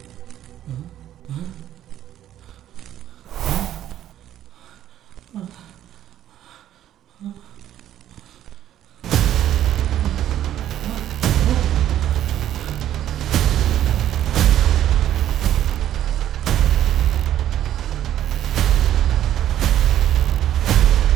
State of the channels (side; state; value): left; quieter; 11.7 dB